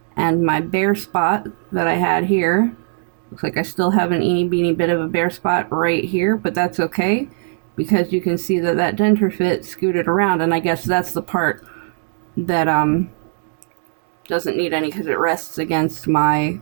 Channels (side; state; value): left; silent; digital silence